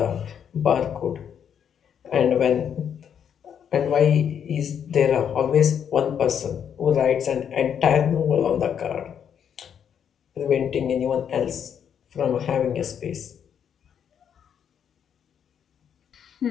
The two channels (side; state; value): right; quieter; 8.3 dB